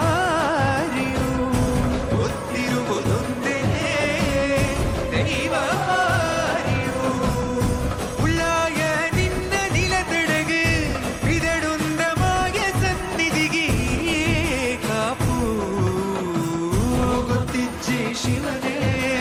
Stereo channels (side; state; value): both; identical; correlation 1.00